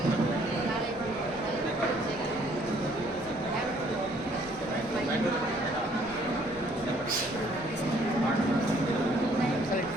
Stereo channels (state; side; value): noise; left; rumble, 20 dB below the sound